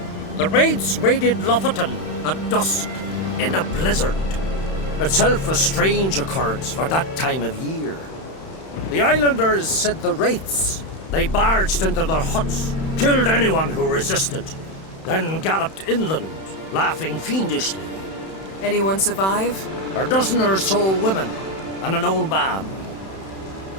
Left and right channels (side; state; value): right; late; 31 ms